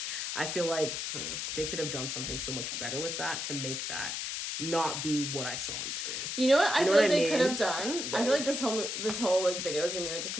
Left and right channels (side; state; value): left; noise; hiss, 3 dB below the sound